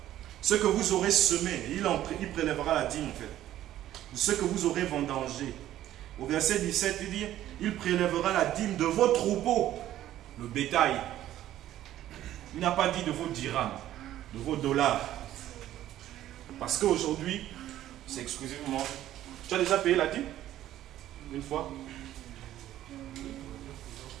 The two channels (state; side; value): quieter; left; 13.0 dB